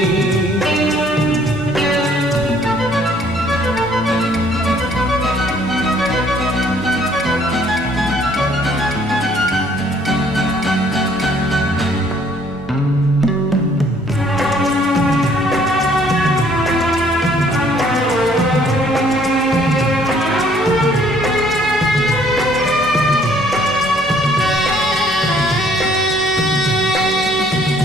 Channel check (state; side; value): normal; both; correlation 0.61